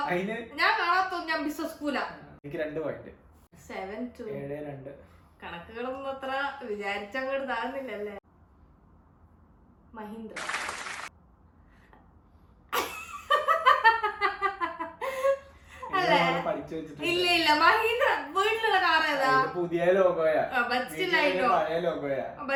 ഞാൻ കാണാത്തൊന്നും. ഞാൻ ബിസിനസ് സ്കൂലാ. കണക്കുകളൊന്നും അത്ര വിചാരിച്ചങ്ങോട്ട് താഴ്ന്നില്ലല്ലേ. മഹീന്ദ്ര. ഇല്ല മഹീന്ദ്ര വീട്ടിലുള്ള കാർ ഏതാ? പുതിയ ലോഗോയാ.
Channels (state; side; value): identical; both; correlation 1.00